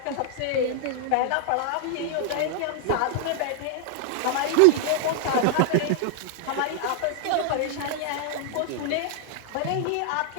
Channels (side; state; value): both; different; correlation -0.01